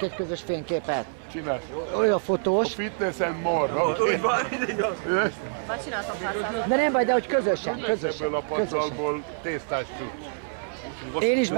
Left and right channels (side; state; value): left; silent; 61 dB below the other